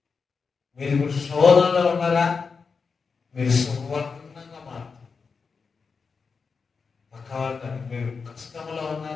మీరు ఇప్పుడు శోధనలో ఉన్నారా? మీరు సువర్ణంగా మారుతారు. పక్కవాళ్ళని మీరు కష్టంలో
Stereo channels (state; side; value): quieter; right; 5.1 dB